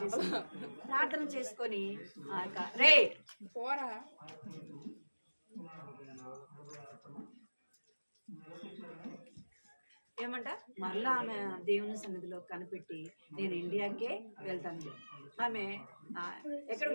చేసుకొని రే ఏమంట మళ్ళా ఆమె దేవుని సన్నిధిలో కనిపెట్టి నేను ఇండియాకే వెళ్తాను. ఆమె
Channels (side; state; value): both; inverted; correlation -1.00